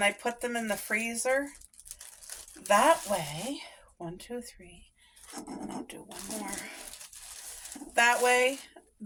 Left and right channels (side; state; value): both; identical; correlation 1.00